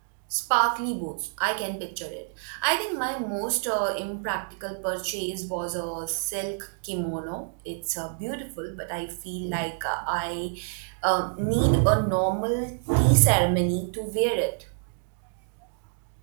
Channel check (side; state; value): left; silent; digital silence